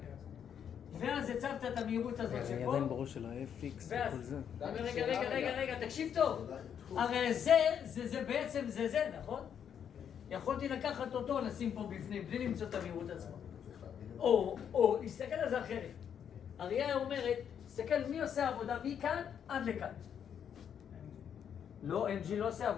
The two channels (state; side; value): quieter; right; 8.4 dB